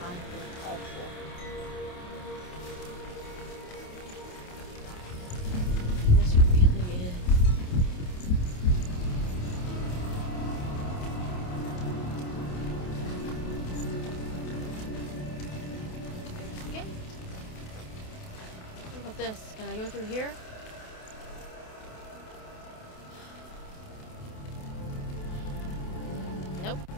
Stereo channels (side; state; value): right; late; 28 ms